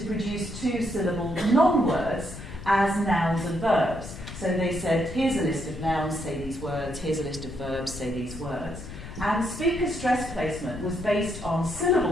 produce two-syllable non-words as nouns and verbs. So they said, here's a list of nouns, say these words, here's a list of verbs, say these words. And speaker stress placement was based on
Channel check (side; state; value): left; noise; rumble, 11 dB below the sound